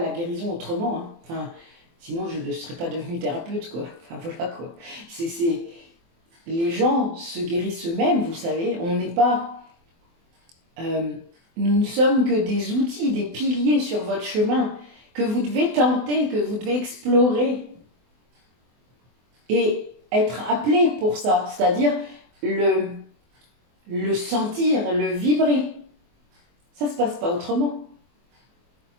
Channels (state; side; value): late; left; 24 ms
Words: guérison autrement. Hein. Enfin, sinon, je ne serais pas devenue thérapeute, quoi. Enfin, voilà, quoi. Les gens se guérissent eux-mêmes, vous savez. On n'est pas... nous ne sommes que des outils, des piliers sur votre chemin que vous devez tenter, que vous devez explorer et être appelé pour ça. C'est-à-dire, le le sentir, le vibrer. Ça ne se passe pas autrement.